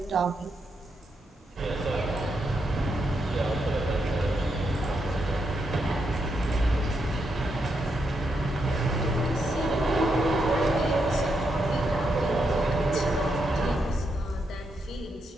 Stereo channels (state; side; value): normal; both; correlation 0.81